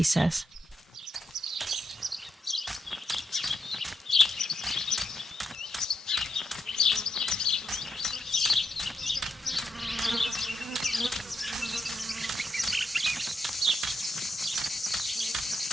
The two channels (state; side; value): normal; both; correlation 0.82